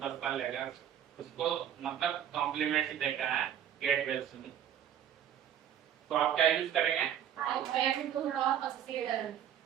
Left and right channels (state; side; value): quieter; left; 9.8 dB